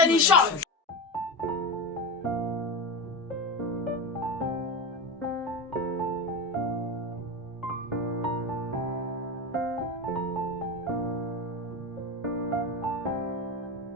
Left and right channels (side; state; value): both; normal; correlation 0.21